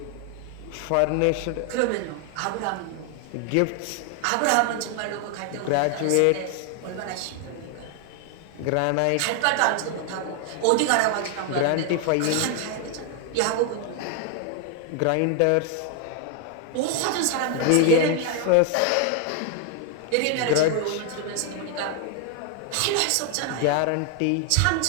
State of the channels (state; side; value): different; both; correlation 0.00